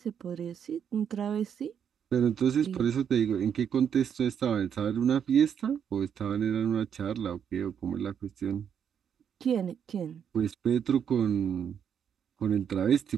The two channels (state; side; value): quieter; left; 8.1 dB